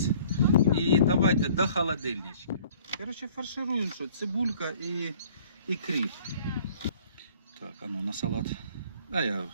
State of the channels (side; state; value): both; inverted; correlation -0.54